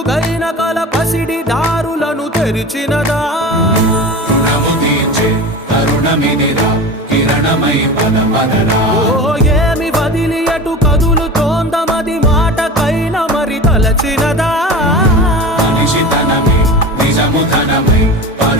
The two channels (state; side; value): normal; both; correlation 0.32